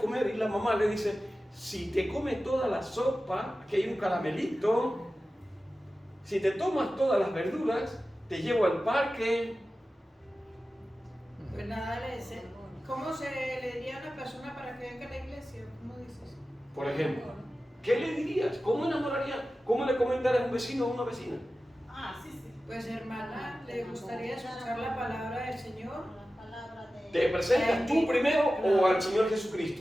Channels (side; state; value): both; normal; correlation 0.94